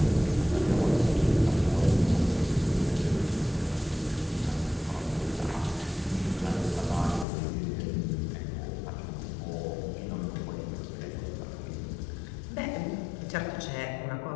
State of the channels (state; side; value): drops out; right; at 7.2 s